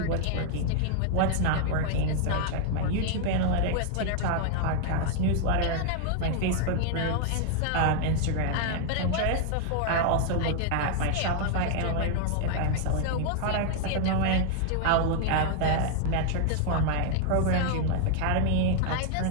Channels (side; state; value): both; different; correlation -0.01